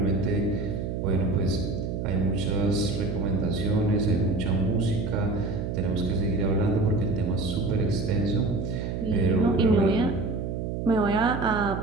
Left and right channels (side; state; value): right; noise; hum, 3 dB below the sound